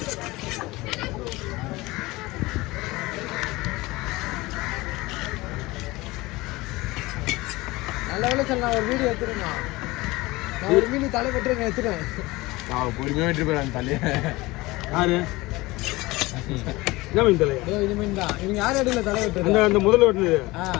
நல்ல வேலை சார் நான் ஒரு வீடியோ எடுத்துருங்க நான் ஒரு மீன் தலை வெட்டுறேங்க எடுத்துருவேன் நான் பொறுமையாக வெட்டு போயிடாங்க தலையை யாரு என்ன மீன் தலை இது மீன் தான் இவங்க யார் இடையில தலை வெட்டுறது அந்த அந்த முதல்ல வெட்டுனது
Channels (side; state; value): right; quieter; 20.9 dB